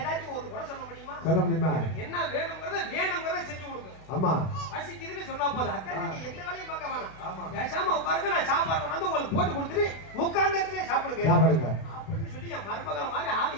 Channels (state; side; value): late; right; 32 ms